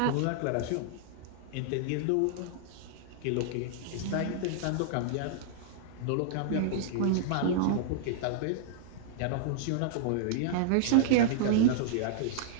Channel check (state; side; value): different; both; correlation -0.01